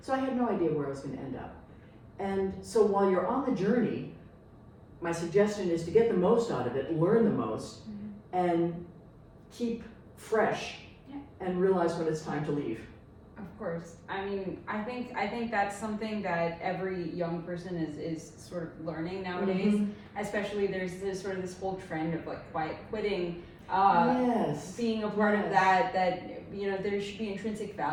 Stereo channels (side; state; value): both; identical; correlation 1.00